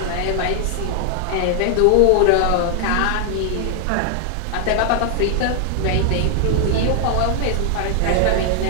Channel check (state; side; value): different; both; correlation 0.00